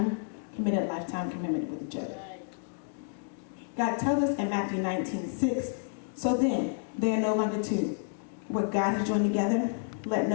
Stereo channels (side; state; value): right; silent; digital silence